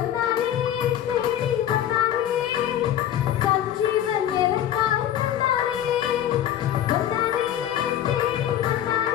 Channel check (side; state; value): right; quieter; 10.9 dB